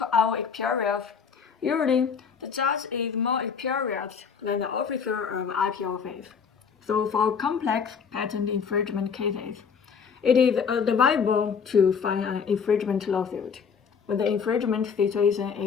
our experience, usually the judge is more experienced than the officer of appeal office. So for complex patent infringement cases, it is advisable to file an infringement lawsuit. When the infringement situation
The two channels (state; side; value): quieter; right; 6.3 dB